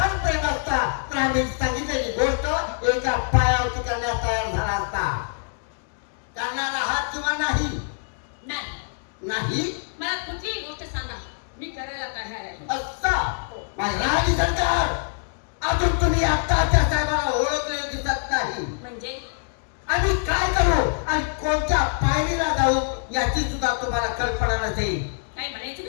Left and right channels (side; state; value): right; silent; digital silence